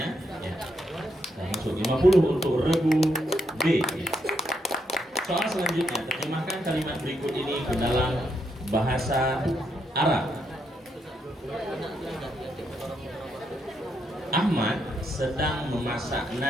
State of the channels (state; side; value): normal; both; correlation 0.78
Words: Ya. Nah, masuk 50 untuk regu B. Ya. Soal selanjutnya, terjemahkan kalimat berikut ini ke dalam bahasa Arab. Ahmad sedang memasak